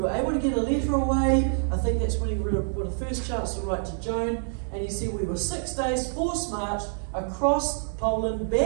able to get a letter away. I think that's when he got the first chance to write to Joan. And he said we were 6 days forced march across Poland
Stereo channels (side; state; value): left; silent; digital silence